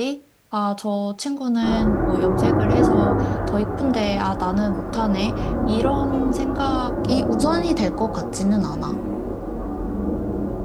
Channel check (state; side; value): identical; both; correlation 1.00